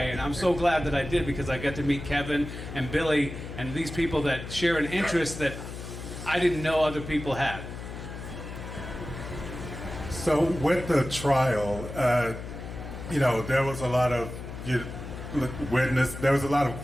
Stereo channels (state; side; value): noise; left; hum, 10 dB below the sound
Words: and I'm so glad that I did, because I got to meet Kevin and Billy and these people that share an interest that I didn't know other people had. So with the trial, there was a lot of there was a lot of